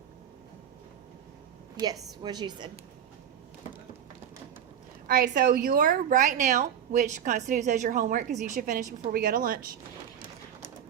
Yes, what you said. All right, so your right now, which constitutes as your homework because you should finish before we go to lunch. Is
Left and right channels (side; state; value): left; quieter; 9.2 dB